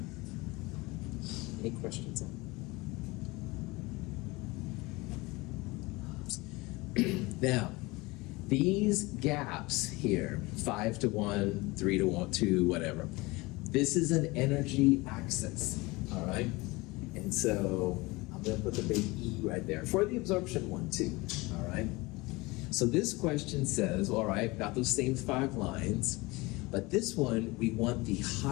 Any questions on that? Now, these gaps here, 5 to 1, 3 to 1, 2, whatever, this is an energy axis, all right? And so I'm going to put the big E right there for the absorption one too, all right? So this question says, all right, got those same 5 lines, but this one, we want the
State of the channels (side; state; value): right; quieter; 23.1 dB